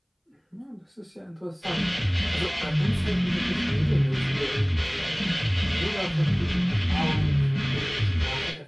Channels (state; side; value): identical; both; correlation 1.00